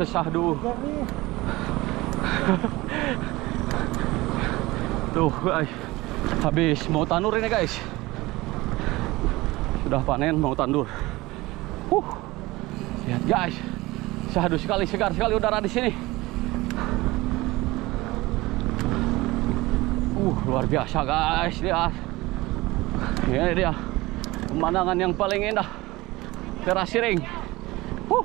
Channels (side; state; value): left; quieter; 20.2 dB